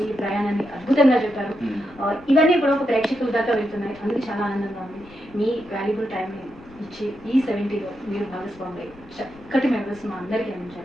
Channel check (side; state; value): left; noise; rumble, 23 dB below the sound